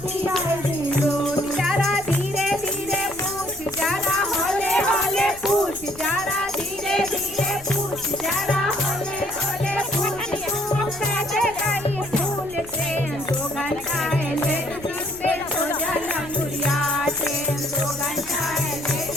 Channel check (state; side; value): noise; left; rumble, 19 dB below the sound